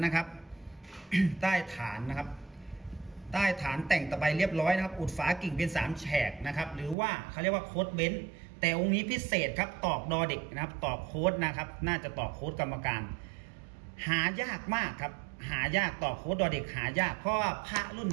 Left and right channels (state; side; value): drops out; left; at 7.0 s